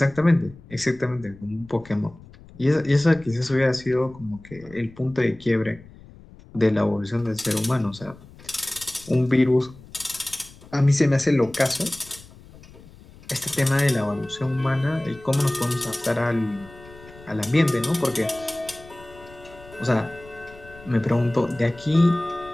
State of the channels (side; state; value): left; noise; rumble, 21 dB below the sound